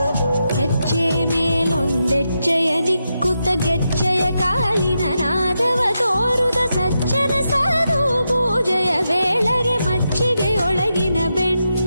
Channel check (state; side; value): inverted; both; correlation -0.86